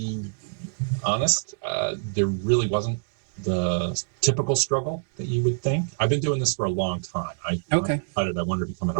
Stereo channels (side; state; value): left; silent; digital silence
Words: honest. There really wasn't the typical struggle that you would think. I've been doing this for a long time. I decided I wanted to become an